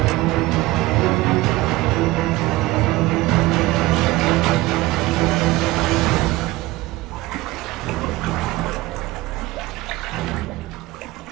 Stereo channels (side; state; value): left; quieter; 19.1 dB